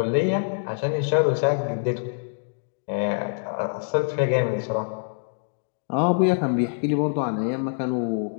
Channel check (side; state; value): right; silent; digital silence